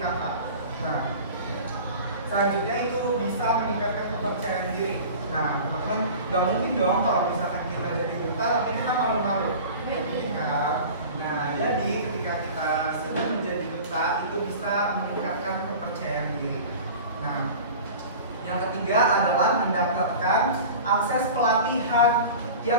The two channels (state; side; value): inverted; both; correlation -0.38